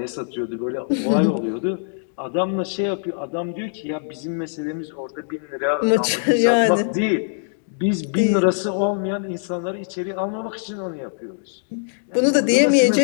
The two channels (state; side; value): silent; right; digital silence